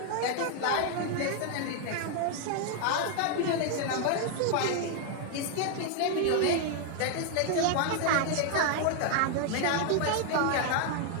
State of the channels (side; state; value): both; different; correlation 0.00